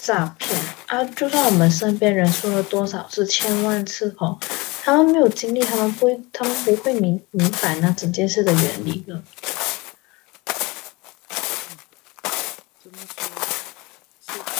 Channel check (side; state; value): right; quieter; 24.5 dB